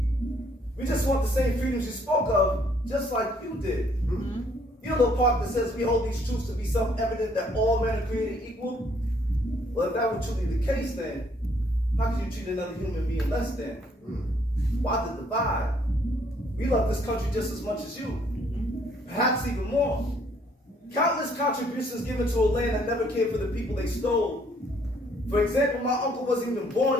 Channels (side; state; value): both; normal; correlation 0.65